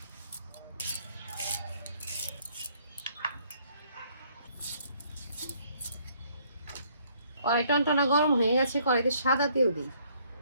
কড়াই টনটনা গরম হয়ে গেছে, কড়াইতে সাদা তেল দিই।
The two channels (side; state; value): both; inverted; correlation -0.65